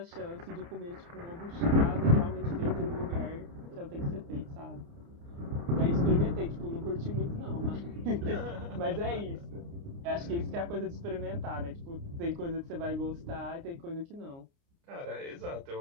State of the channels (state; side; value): late; left; 29 ms